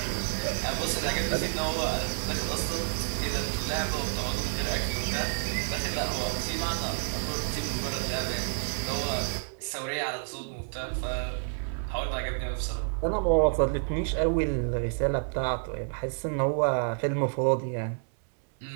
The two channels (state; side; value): silent; left; 58 dB below the other